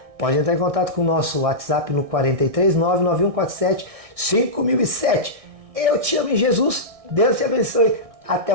Pode entrar em contato com o nosso WhatsApp no 43 99147 5007. Eu te amo em Jesus, Deus te abençoe, até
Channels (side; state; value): left; late; 1.6 ms